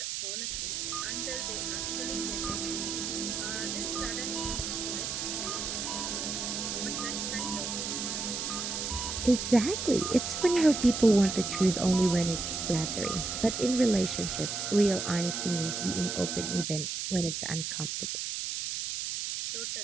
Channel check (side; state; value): right; noise; hiss, 3 dB below the sound